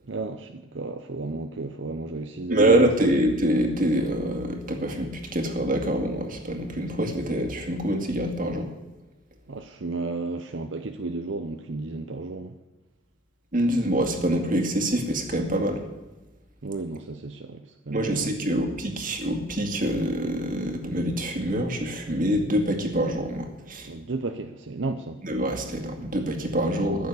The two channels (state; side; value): normal; both; correlation 0.46